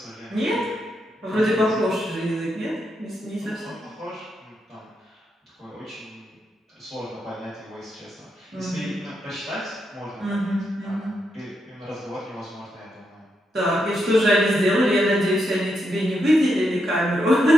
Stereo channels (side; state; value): both; normal; correlation 0.82